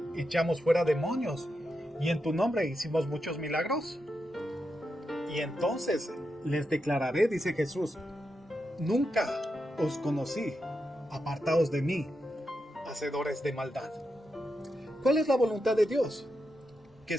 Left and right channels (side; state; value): both; normal; correlation 0.86